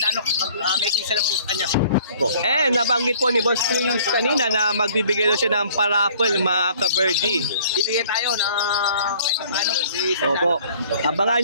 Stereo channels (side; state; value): both; inverted; correlation -0.54